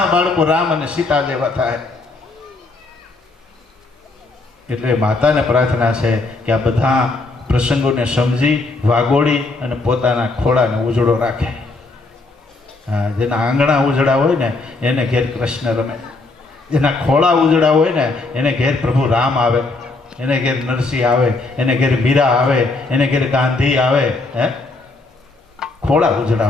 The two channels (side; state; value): right; quieter; 3.4 dB